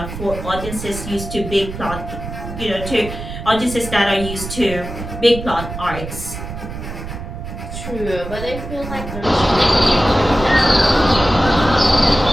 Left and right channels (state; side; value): noise; right; rumble, 9 dB below the sound